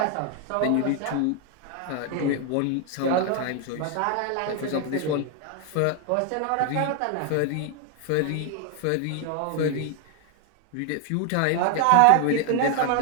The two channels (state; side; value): different; both; correlation 0.01